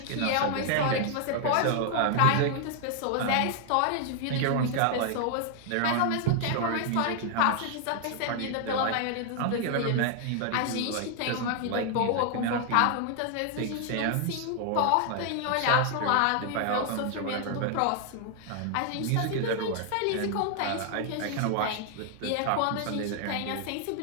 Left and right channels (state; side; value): different; both; correlation 0.00